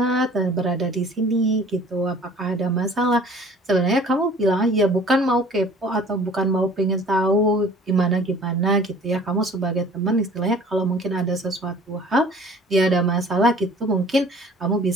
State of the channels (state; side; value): normal; both; correlation 0.50